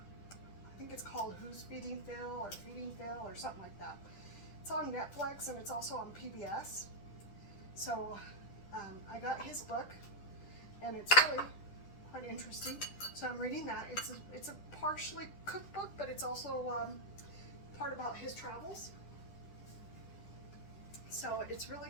think it's called Who's Feeding Phil or Feeding Phil or something like that. It's on Netflix and it's also on PBS. So I got his book, and it's really quite interesting. So I'm reading that. It's a partially cookbook, but it's also part about his travels. So it's really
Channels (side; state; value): right; late; 10 ms